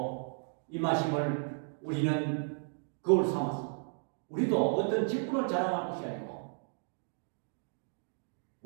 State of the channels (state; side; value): silent; left; digital silence